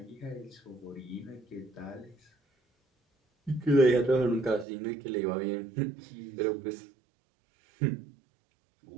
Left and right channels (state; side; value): drops out; left; at 4.7 s